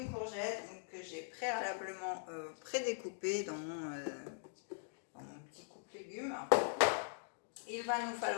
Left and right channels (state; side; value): silent; right; digital silence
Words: courgette que j'ai préalablement prédécoupée dans mon petit coupe légumes. Il va nous